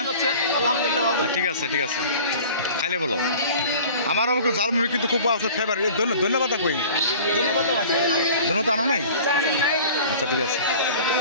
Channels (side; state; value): both; inverted; correlation -0.43